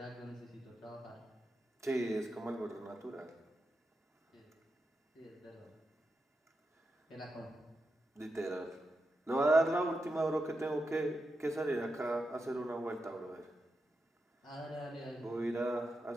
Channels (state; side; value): normal; both; correlation 0.88